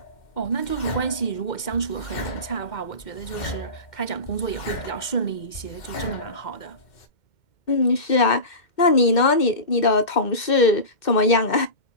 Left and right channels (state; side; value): late; right; 2.1 ms